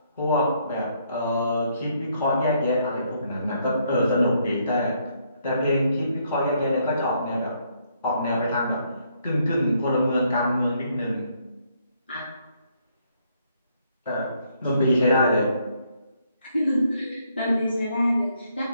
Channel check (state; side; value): inverted; both; correlation -0.71